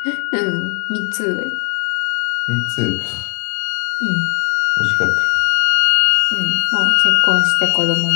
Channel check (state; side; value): quieter; right; 39.2 dB